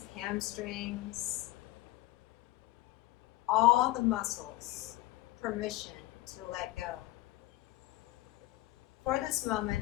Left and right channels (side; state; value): right; quieter; 17.6 dB